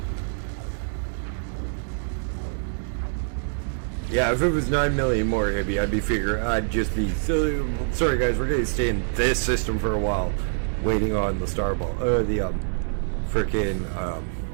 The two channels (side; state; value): left; silent; digital silence